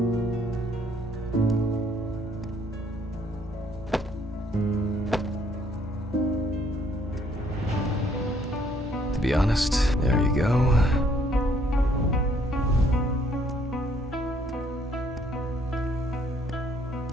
To be honest, there you go.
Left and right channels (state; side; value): normal; both; correlation 0.66